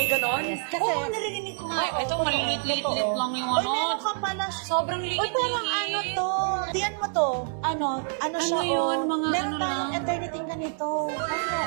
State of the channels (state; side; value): silent; left; digital silence